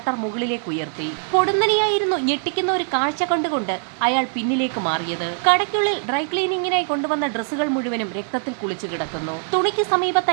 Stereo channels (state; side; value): silent; left; digital silence